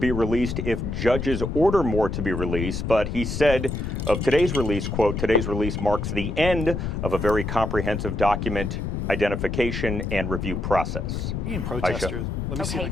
released if judges order more to be released, but he said of today's release, quote, today's release marks the end of a very comprehensive document identification and review process. Protesters. Let me see.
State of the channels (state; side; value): noise; left; rumble, 3 dB below the sound